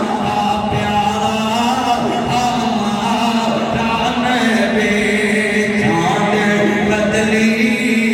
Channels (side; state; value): both; identical; correlation 1.00